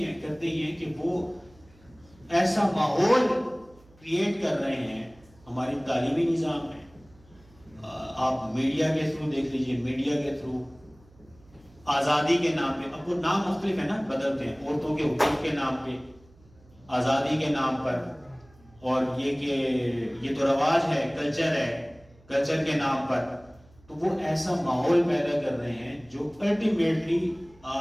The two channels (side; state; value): right; noise; hum, 28 dB below the sound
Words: ہیں؟ کرتے یہ ہیں کہ وہ ایسا ماحول کریٹ کر رہے ہیں ہماری تعلیمی نظام میں، آپ میڈیا کے تھرو دیکھ لیجئے، میڈیا کے تھرو آزادی کے نام پہ، اب وہ نام مختلف ہے نا، بدلتے ہیں، عورتوں کے حقوق کے نام پہ، آزادی کے نام پر، اور یہ کہ یہ تو رواج ہے، کلچر ہے، کلچر کے نام پر، تو وہ ایسا ماحول پیدا کر رہے ہیں جو الٹیمیٹلی